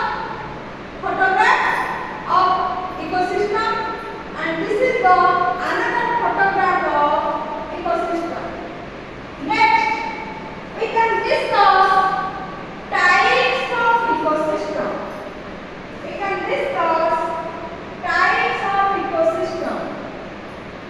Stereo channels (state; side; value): identical; both; correlation 1.00